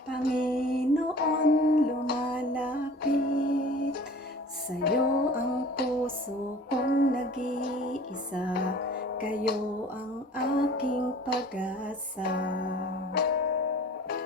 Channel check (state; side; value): normal; both; correlation 0.45